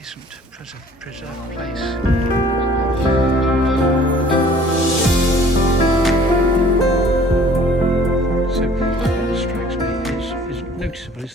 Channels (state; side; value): normal; both; correlation 0.53